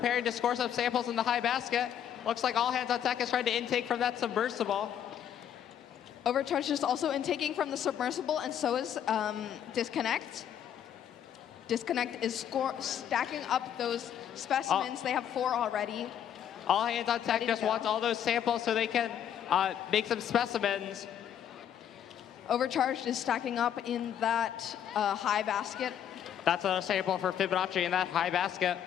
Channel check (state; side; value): quieter; right; 9.7 dB